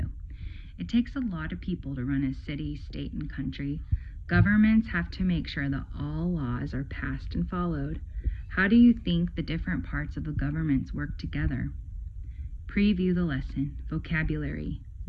It takes a lot of people to run a city, state, and country. Governments have to make sure that all laws are passed and followed. How do you think the different parts of the governments work together? Preview the lesson. Vocabulary.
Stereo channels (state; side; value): identical; both; correlation 1.00